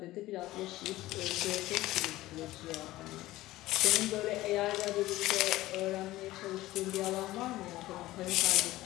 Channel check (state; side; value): quieter; right; 16.9 dB